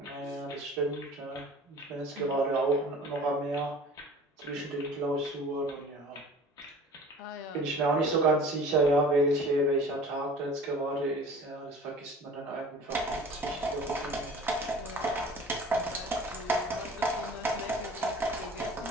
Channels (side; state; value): both; normal; correlation 0.44